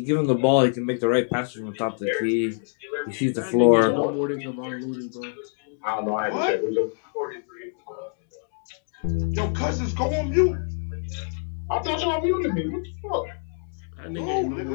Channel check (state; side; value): silent; right; digital silence